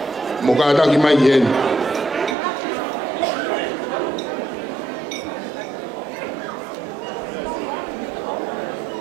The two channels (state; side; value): drops out; left; at 2.4 s